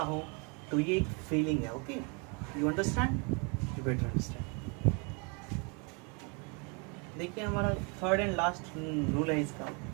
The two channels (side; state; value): left; quieter; 33.7 dB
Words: हूँ, तो ये एक फीलिंग है। Okay, you understand, you better understand. देखिए हमारा थर्ड एंड लास्ट रूल है इसका